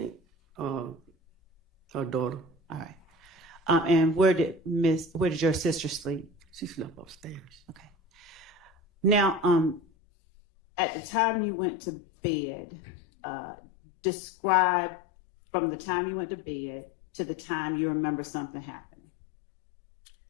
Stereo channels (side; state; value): right; drops out; at 9.8 s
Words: her daughter. All right. And where did your sister sleep? She slept upstairs. Okay. Now, at the time you went to bed, describe from the time you went to bed to the time you remember something happening?